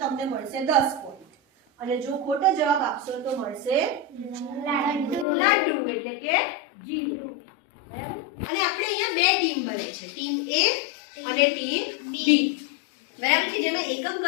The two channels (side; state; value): right; drops out; at 5.2 s